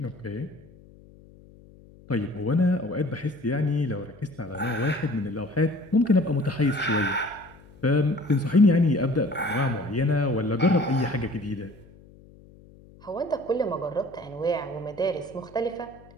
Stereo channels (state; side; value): noise; left; hum, 24 dB below the sound